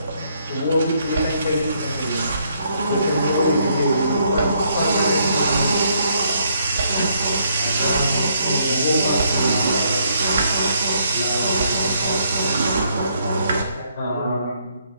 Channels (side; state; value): both; inverted; correlation -0.71